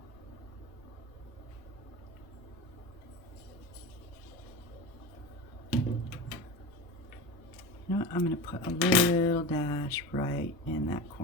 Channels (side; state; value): both; normal; correlation 0.29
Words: You know what? I'm going to put a little dash right in that